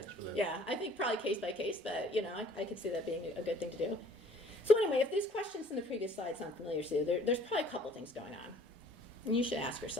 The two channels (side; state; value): both; normal; correlation 0.56